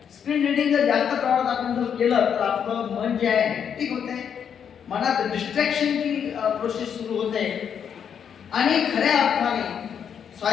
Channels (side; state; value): right; quieter; 7.9 dB